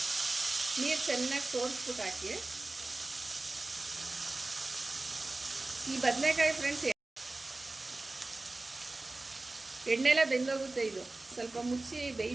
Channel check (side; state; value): left; quieter; 3.1 dB